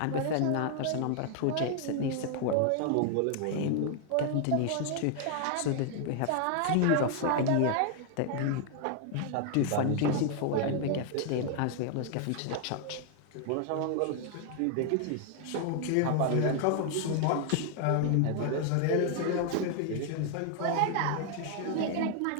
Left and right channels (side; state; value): both; different; correlation 0.00